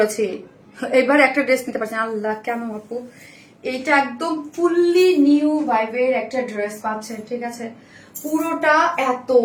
এবার একটা ড্রেস নিতে পারছি না। আল্লাহ কেন আপু, এইটা একদম ফুললি নিউ ভাইবের একটা ড্রেস পাচ্ছেন, ঠিক আছে? পুরোটা এত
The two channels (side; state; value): both; identical; correlation 1.00